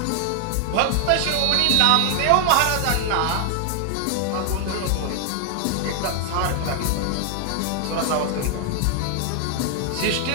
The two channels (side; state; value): both; different; correlation 0.00